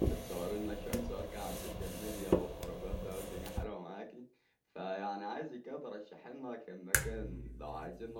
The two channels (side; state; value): both; identical; correlation 1.00